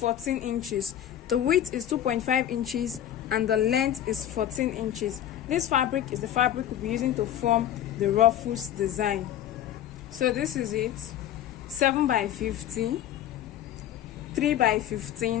inches. The width is 2.5 inches and the length is 14 inches. This fabric is the fabric we'll be using to form the Ruffles design. So this is it: 7 by 50, 3 by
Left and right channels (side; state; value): right; quieter; 11.1 dB